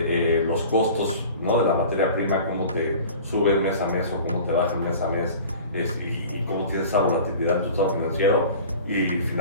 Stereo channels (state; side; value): inverted; both; correlation -0.41